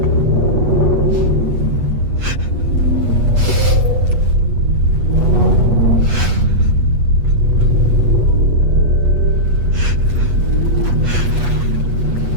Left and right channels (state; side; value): late; left; 8.3 ms